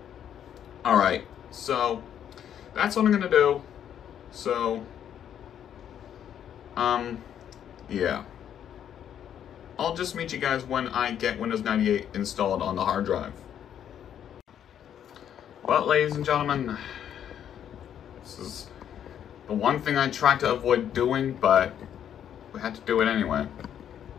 Alright, so that's what I'm going to do. So, yeah. I'll just meet you guys when I get Windows 98 installed on the hard drive. Well, ladies and gentlemen, this is the one thing I tried to avoid doing, but we had to do it anyway.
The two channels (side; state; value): right; quieter; 9.6 dB